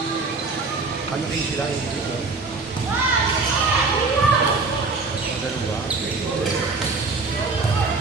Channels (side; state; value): left; quieter; 4.0 dB